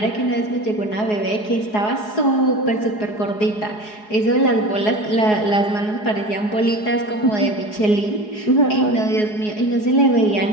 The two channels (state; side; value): late; right; 4.8 ms